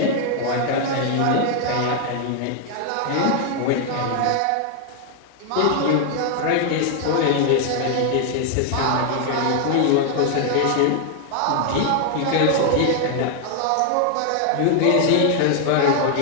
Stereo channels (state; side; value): different; both; correlation 0.00